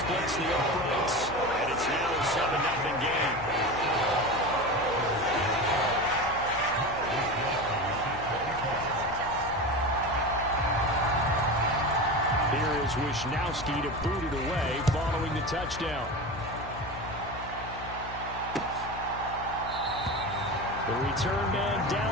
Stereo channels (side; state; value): left; noise; hum, 13 dB below the sound